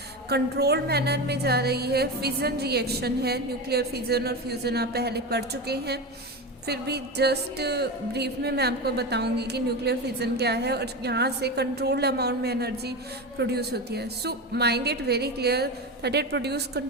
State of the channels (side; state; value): both; normal; correlation 0.21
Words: कंट्रोल्ड मैनर में जा रही है। फिजन रिएक्शन है, न्यूक्लियर फिजन और फ्यूज़न आप पहले पढ़ चुके हैं। फिर भी जस्ट ब्रीफ में मैं आपको बताऊंगी कि न्यूक्लियर फिजन क्या है और यहाँ से कंट्रोल्ड अमाउंट में एनर्जी प्रोड्यूस होती है। So mind it very clear that it produce